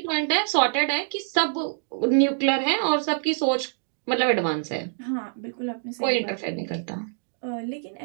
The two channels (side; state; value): left; silent; digital silence